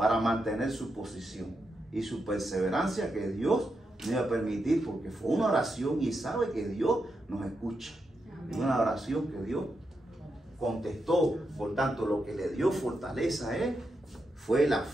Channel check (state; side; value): normal; both; correlation 0.85